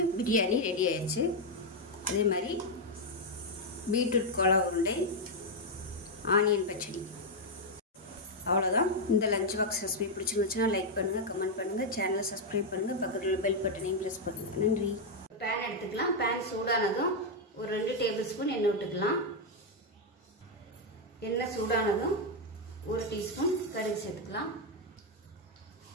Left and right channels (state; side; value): normal; both; correlation 0.00